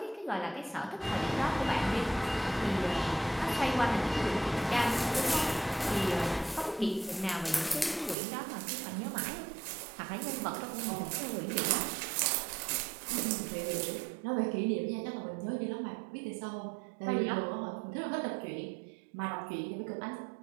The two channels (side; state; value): left; drops out; at 8.2 s